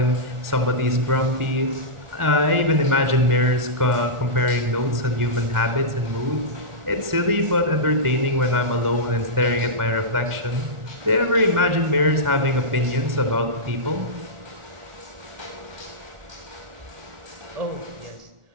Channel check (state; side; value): late; left; 1.4 ms